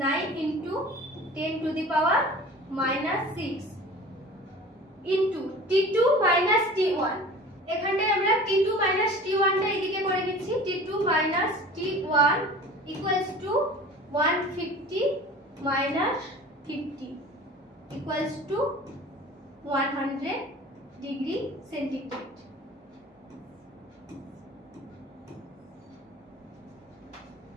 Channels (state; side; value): normal; both; correlation 0.41